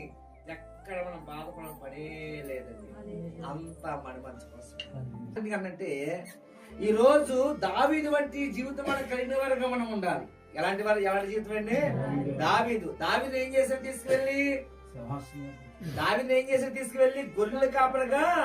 ఎక్కడ మనం బాధపడడం పనే లేదండి. అంతా మన మంచి కోసం. ఎందుకంటే ఈ రోజు దావీదు వంటి జీవితం మనకు కలిగిన వారుగా మనం ఉండాలి. ఎలాంటి జీవితం అండి? దావీదు ఏం చేశారు? తీసుకువెళ్ళి గొర్రెల కాపరిగా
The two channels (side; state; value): both; identical; correlation 1.00